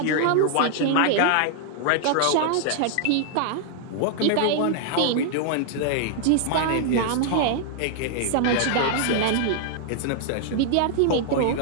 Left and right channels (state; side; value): different; both; correlation -0.01